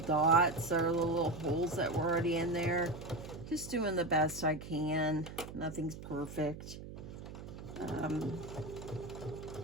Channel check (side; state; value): right; noise; hum, 12 dB below the sound